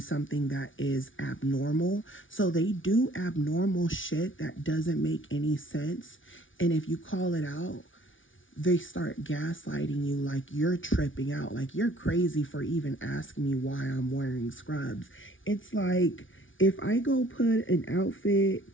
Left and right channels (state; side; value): late; right; 0.57 ms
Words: something that is abnormal. So they do abnormal shit that doesn't make any sense. And if you call it out, they start gaslighting you like you're tripping out, like you're crazy for even asking me why I'm wearing scrubs. It's like, if I go put an